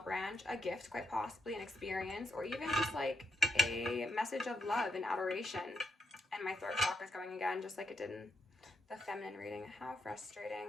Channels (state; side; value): normal; both; correlation 0.80